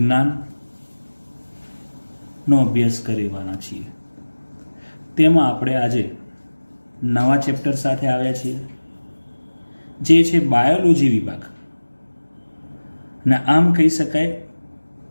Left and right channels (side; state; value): both; inverted; correlation -1.00